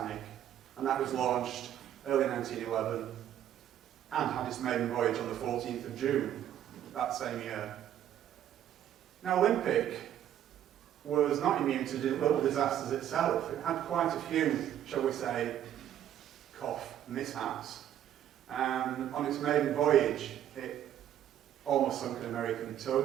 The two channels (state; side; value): quieter; left; 11.0 dB